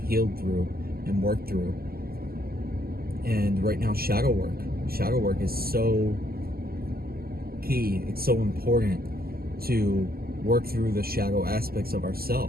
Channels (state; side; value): late; left; 0.44 ms